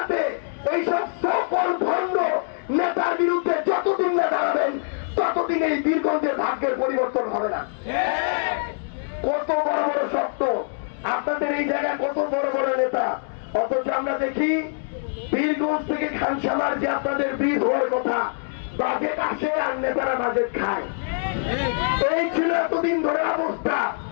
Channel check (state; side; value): silent; right; digital silence